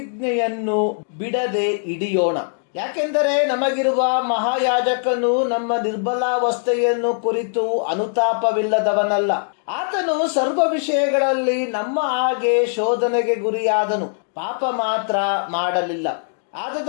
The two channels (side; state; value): right; silent; digital silence